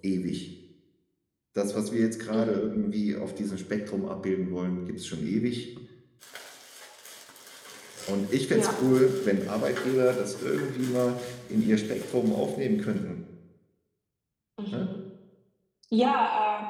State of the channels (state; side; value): identical; both; correlation 1.00